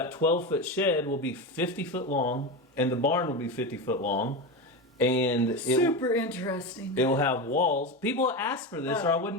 12-foot shed will be 50 foot long, and the barn will be 50 foot long. And super interesting. It will have walls. People ask for this, or I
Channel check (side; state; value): both; normal; correlation 0.19